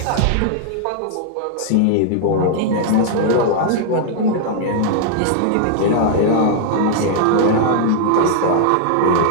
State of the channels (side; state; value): both; different; correlation -0.01